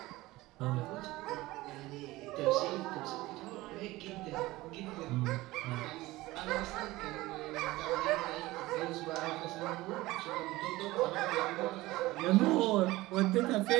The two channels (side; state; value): left; quieter; 18.8 dB